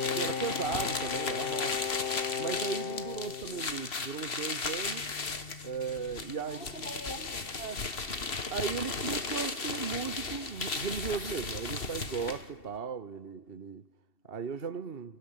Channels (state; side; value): late; right; 2.7 ms